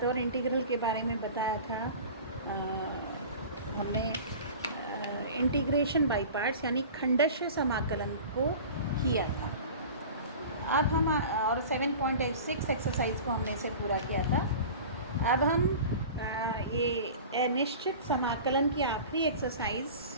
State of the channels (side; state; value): both; inverted; correlation -0.37